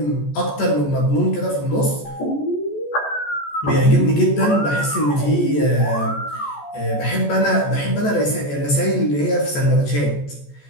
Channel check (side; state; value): right; late; 14 ms